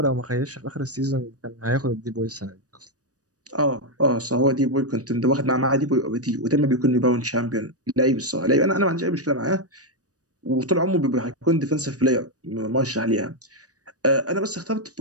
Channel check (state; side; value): late; left; 0.67 ms